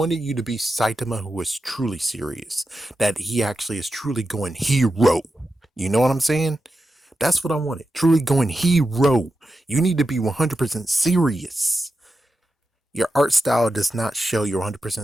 you to be Saitama who was truly serious. That he actually is truly going hero. You know what I'm saying? That's what I wanted. Truly going hero. You need to be 100% serious. Your art style does not show you're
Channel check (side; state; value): both; normal; correlation 0.90